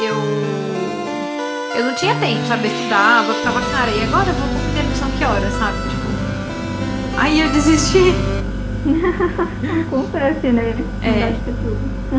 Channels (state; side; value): identical; both; correlation 1.00